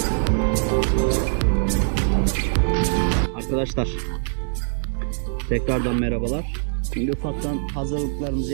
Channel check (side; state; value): left; silent; digital silence